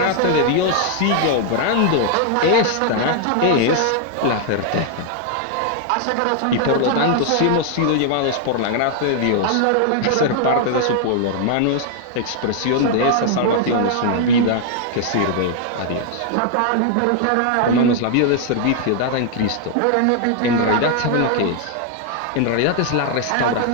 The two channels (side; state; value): both; different; correlation 0.00